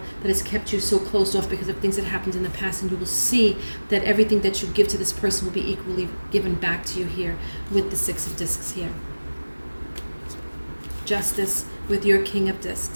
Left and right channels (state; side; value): inverted; both; correlation -1.00